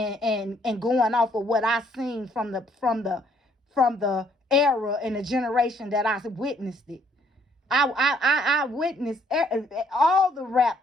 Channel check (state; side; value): normal; both; correlation 0.66